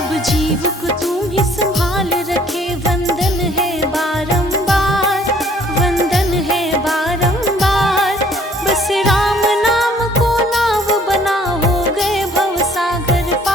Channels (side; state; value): both; normal; correlation 0.59